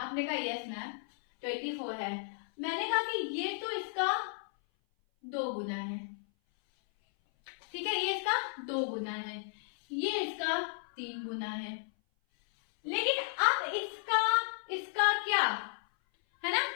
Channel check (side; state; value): right; silent; 55 dB below the other